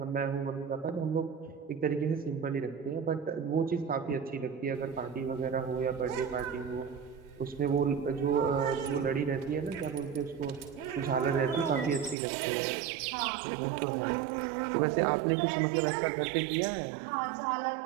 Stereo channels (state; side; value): drops out; left; at 12.2 s